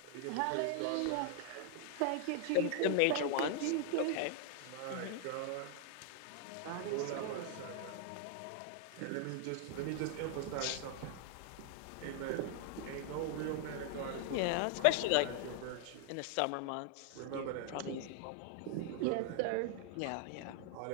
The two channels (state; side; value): different; both; correlation 0.00